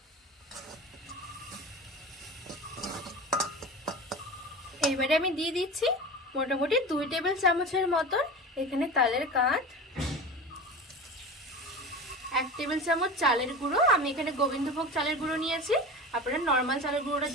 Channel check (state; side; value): normal; both; correlation 0.31